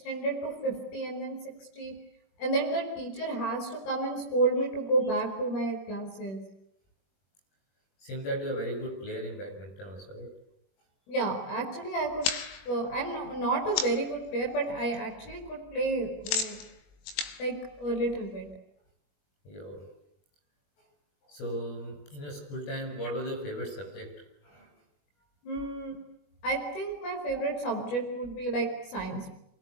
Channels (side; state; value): right; late; 21 ms